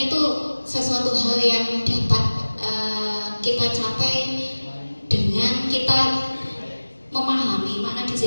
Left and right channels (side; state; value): both; inverted; correlation -1.00